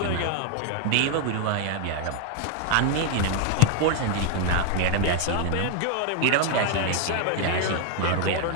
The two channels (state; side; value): different; both; correlation 0.00